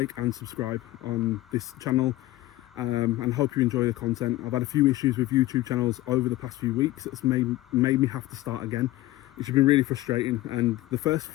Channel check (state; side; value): quieter; right; 17.0 dB